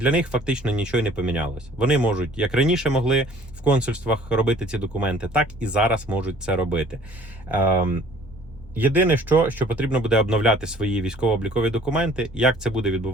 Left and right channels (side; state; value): both; normal; correlation 0.53